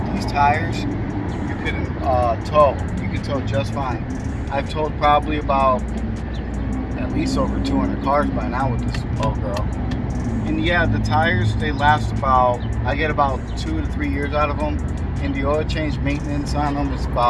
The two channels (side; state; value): both; identical; correlation 1.00